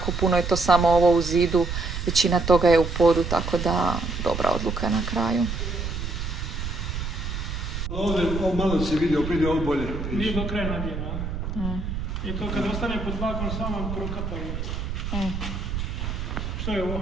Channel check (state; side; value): noise; right; rumble, 4 dB below the sound